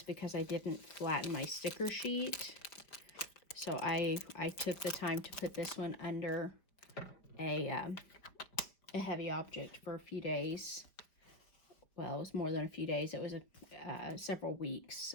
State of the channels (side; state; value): right; late; 4.9 ms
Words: because I didn't flatten my sticker sheet. So I took the time to put this one under a heavy object for a few days. Well, it was more than a few days. It was several weeks